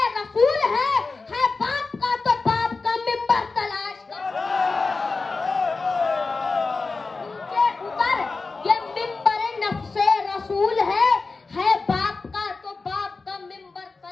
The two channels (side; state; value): right; quieter; 4.0 dB